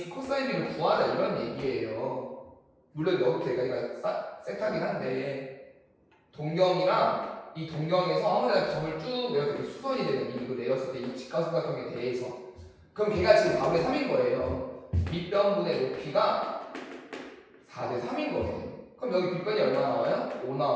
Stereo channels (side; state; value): both; identical; correlation 1.00